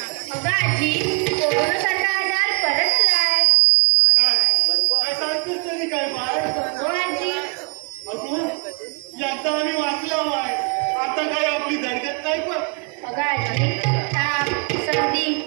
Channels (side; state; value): left; quieter; 37.2 dB